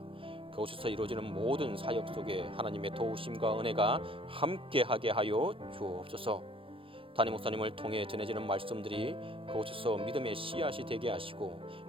그곳에서 이루어지는 모든 사역 속에 하나님의 도우심과 은혜가 함께하게 하여 주옵소서. 담임 목사님을 통해 전해지는 말씀들이 그곳에서 믿음의 씨앗이 되게 하시고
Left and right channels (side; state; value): left; late; 0.26 ms